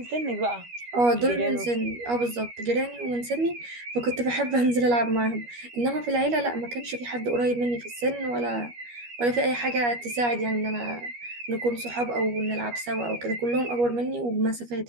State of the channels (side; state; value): left; late; 12 ms